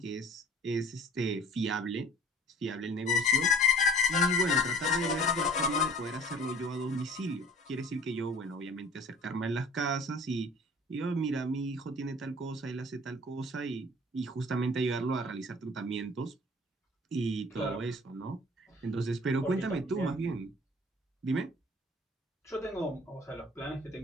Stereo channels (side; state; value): both; normal; correlation 0.48